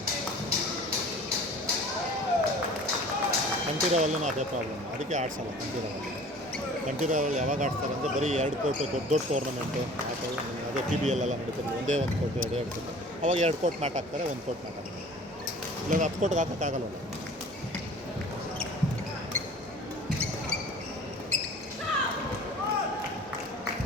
ಕಂಠೀರವಲ್ಲೂ ಅದೇ ಪ್ರಾಬ್ಲಮ್, ಅದಕ್ಕೆ ಆಡ್ಸಲ್ಲ ಕಂಠೀರವಲ್ಲಿ ಯಾವಾಗ ಆಡ್ತಾರೆ ಅಂದರೆ ಬರೀ 2 ಕೋರ್ಟು ದೊಡ್ಡ ಟೂರ್ನಮೆಂಟು ಅದೇ PBL ಎಲ್ಲ ನಡೀತಿರಲಿಲ್ಲ. ಒಂದೇ 1 ಕೋರ್ಟು 2 ಕೋರ್ಟು, ಅವಾಗ 2 ಕೋರ್ಟ್ ಮ್ಯಾಟ್ ಹಾಕ್ತಾರೆ, 1 ಕೋರ್ಟ್ ಮ್ಯಾಟ್ ಹಾಕ್ತಾರೆ. ಇಲ್ಲ 10 ಕೋರ್ಟ್ಗೆ ಹಾಕೋಕ್ಕಾಗಲ್ಲ.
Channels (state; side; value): normal; both; correlation 0.45